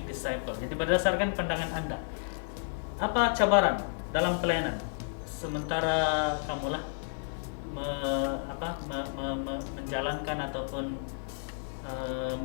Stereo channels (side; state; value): right; silent; 57 dB below the other